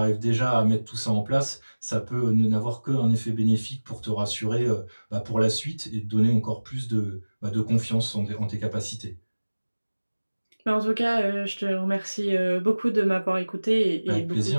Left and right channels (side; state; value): both; inverted; correlation -1.00